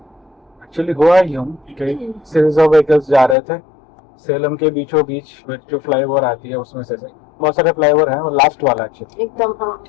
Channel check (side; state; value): right; drops out; at 3.4 s